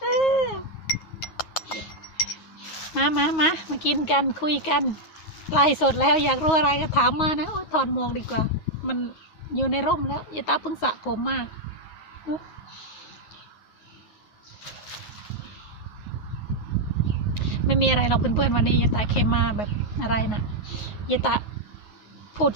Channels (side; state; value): right; late; 9.4 ms